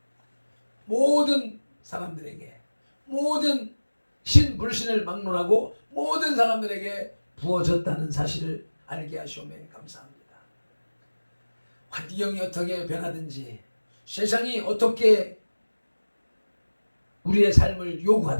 모든 사람들에게, 모든 신불신을 막론하고 모든 사람들에게 부어졌다는 사실을 알게 하시오매 감사합니다. 환경이 어떻게 변하든지, 세상이 어떻게 우리의 삶을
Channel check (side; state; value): both; inverted; correlation -1.00